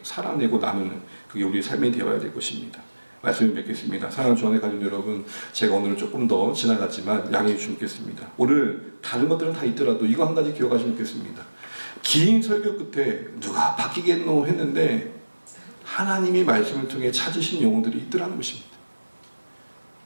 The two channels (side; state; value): both; inverted; correlation -1.00